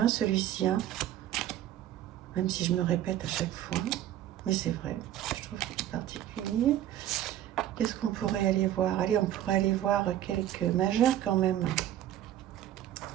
celui-ci. Hein, même si je me répète à chaque fois. Mais c'est vrai, je trouve qu'il est particulier. Qu'est-ce qu'on pourrait aller voir? Allez, on pourrait aller voir quelques majeures quand même.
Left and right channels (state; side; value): quieter; left; 12.1 dB